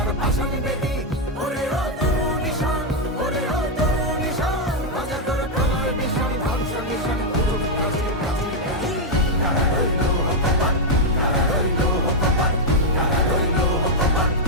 পাষাণ বেদী। ওরে ও তরু নিশান, ওরে ও তরু নিশান, বাজে তোর প্রলয় নিশান ধ্বংস নিশান উরুপ প্রাচীর প্রাচীর ভেদী। কারা রইল কপাট, কারা রইল কপাট, কারা রইল কপাট,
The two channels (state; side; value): normal; both; correlation -0.01